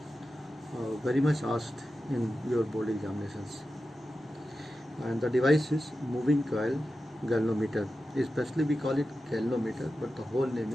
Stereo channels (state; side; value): normal; both; correlation 0.92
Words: very much asked in your board examinations. And the device is moving coil galvanometer. Especially we call it galvanometer, but the whole name